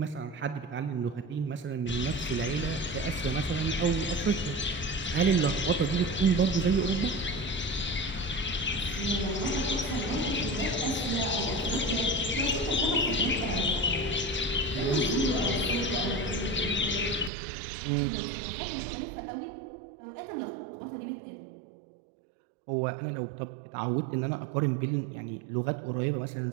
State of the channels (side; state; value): left; drops out; at 17.3 s